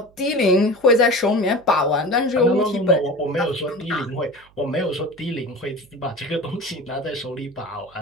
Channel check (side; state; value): right; noise; hum, 29 dB below the sound